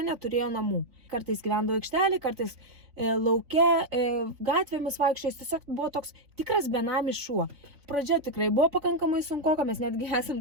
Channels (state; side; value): late; left; 3.6 ms